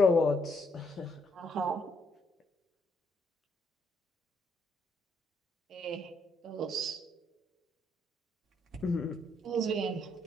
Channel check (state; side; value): normal; both; correlation 0.73